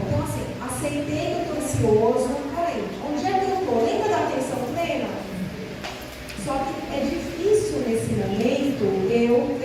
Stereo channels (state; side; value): identical; both; correlation 1.00